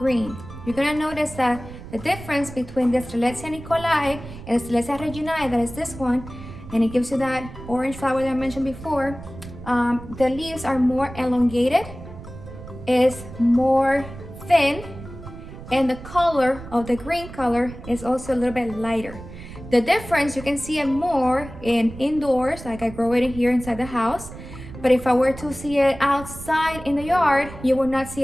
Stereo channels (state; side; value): noise; right; rumble, 14 dB below the sound